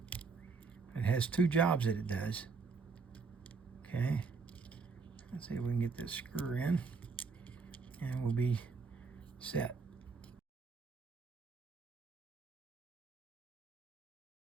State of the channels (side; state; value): left; quieter; 4.7 dB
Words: It has two jobs that it does. Okay. Let's see if we can get this screw in, and we'll be set.